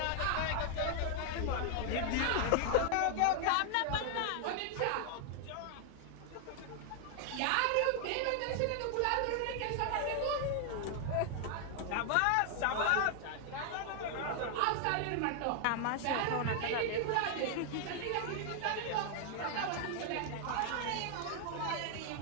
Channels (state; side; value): different; both; correlation 0.00